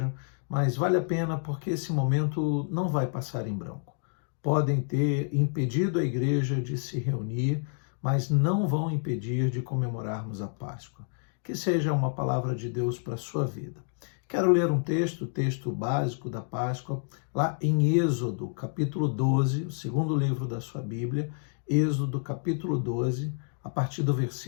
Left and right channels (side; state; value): right; silent; 59 dB below the other